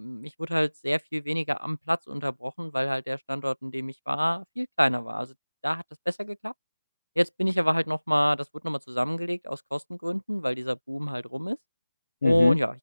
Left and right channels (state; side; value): inverted; both; correlation -0.99